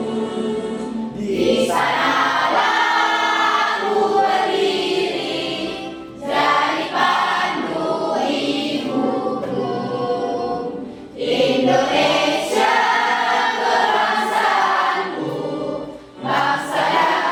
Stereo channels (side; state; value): both; identical; correlation 1.00